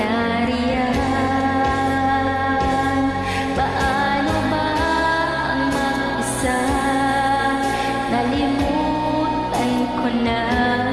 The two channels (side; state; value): right; noise; rumble, 20 dB below the sound